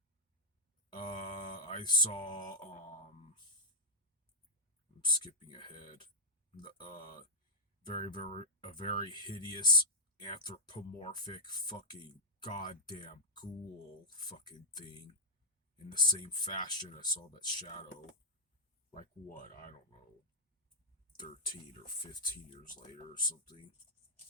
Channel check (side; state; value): both; normal; correlation -0.11